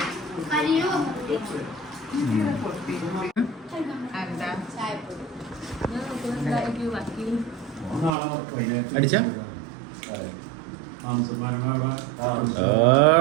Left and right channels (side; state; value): left; drops out; at 8.1 s